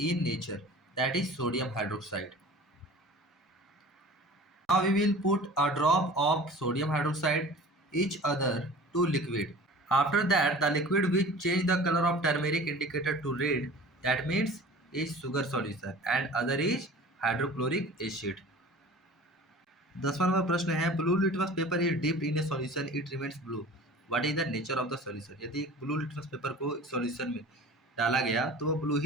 in nature, that is sodium hydroxide. Now we will put a drop of sodium hydroxide each other to liquid. After that, the liquid which change the color of turmeric indicator to red, that means is sugar solution and other is hydrochloric acid। 10वां number प्रश्न है blue litmus paper is dipped in a solution it remains blue, what is the nature of the solution. यदि एक blue litmus paper को एक solution में डाला गया तो वो ब्लू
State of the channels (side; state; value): both; normal; correlation 0.42